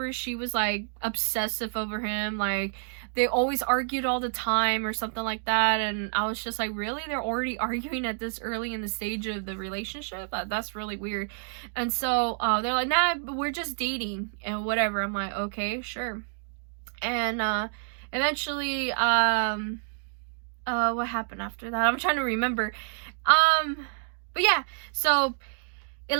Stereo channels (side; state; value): left; silent; digital silence